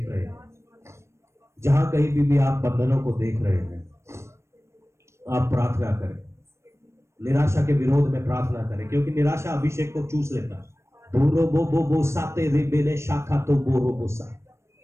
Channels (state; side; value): late; left; 0.13 ms